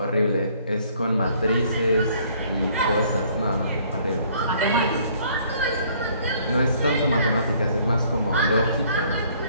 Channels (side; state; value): both; inverted; correlation -0.61